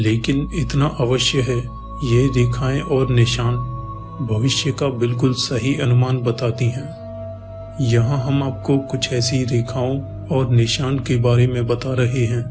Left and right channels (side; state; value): both; identical; correlation 1.00